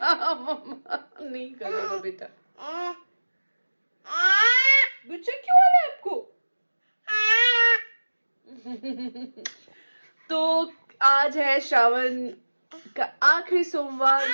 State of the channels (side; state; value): both; inverted; correlation -1.00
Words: मम्मा नहीं करेगा बेटा। गुस्सा क्यों आ रहा है आपको? तो आज है श्रावण का आखिरी सोमवार,